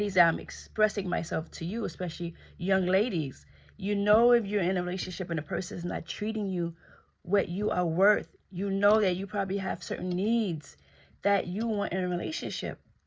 I'm expressing myself to you, especially young ladies. You know, if you're in a relationship and the person is not treating you what you are worth, you know that you probably have certain needs that you want in a relationship,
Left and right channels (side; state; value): both; identical; correlation 1.00